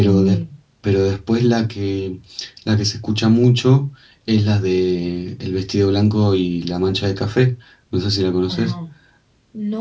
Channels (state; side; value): identical; both; correlation 1.00